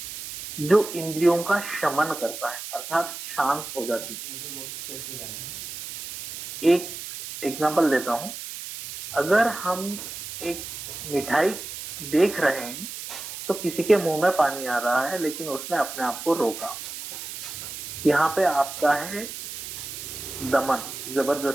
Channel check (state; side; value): noise; right; hiss, 9 dB below the sound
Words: जो इंद्रियों का शमन करता है अर्थात शांत हो जाती है। एक एग्जांपल देता हूं, अगर हम एक मिठाई देख रहे हैं तो किसी के मुंह में पानी आ रहा है लेकिन उसने अपने आप को रोका, यहाँ पे आपका है दमन,